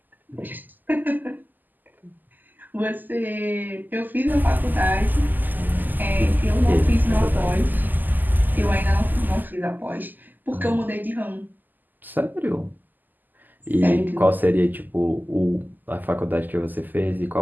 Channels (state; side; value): late; left; 0.086 ms